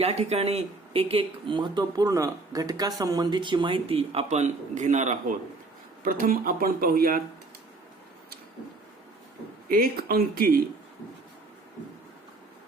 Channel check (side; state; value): left; quieter; 3.3 dB